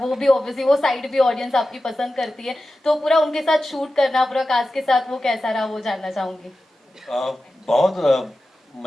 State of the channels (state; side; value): normal; both; correlation 0.93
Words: भी ऑब्वियसली वो साइड भी ऑडियंस आपकी पसंद करती है, तो पूरा उनके साथ शूट करना, पूरा कास्ट के साथ, वो कैसा रहा, वो जानना चाहूंगी। बहुत